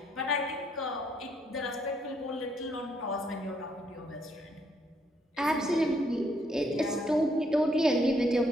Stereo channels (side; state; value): both; normal; correlation 0.72